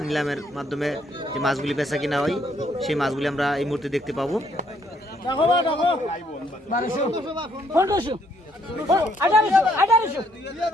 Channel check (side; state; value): both; normal; correlation 0.69